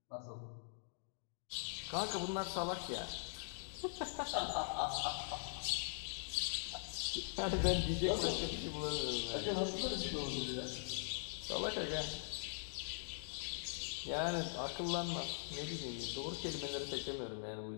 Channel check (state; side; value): silent; right; digital silence